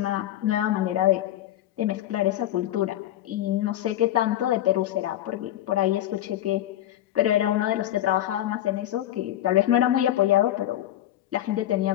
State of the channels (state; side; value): quieter; right; 13.1 dB